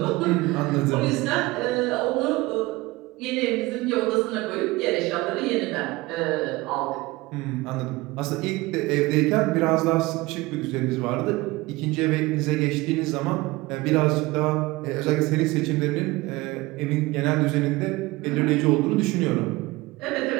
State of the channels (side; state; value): left; quieter; 21.2 dB